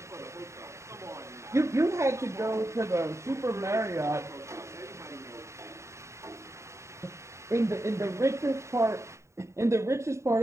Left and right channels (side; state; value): left; late; 0.14 ms